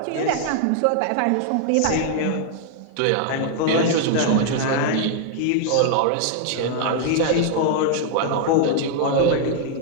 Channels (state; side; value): different; both; correlation 0.00